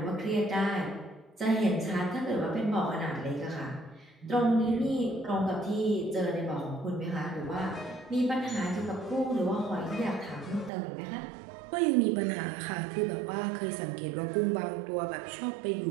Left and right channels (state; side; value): drops out; left; at 10.7 s